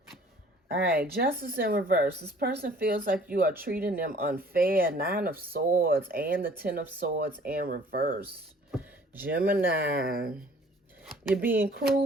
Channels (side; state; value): both; normal; correlation 0.54